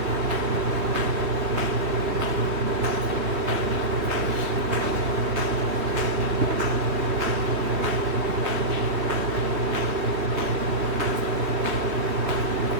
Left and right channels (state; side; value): late; left; 3.3 ms